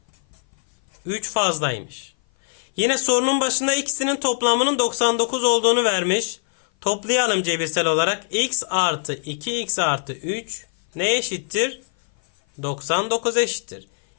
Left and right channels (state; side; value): silent; right; 57 dB below the other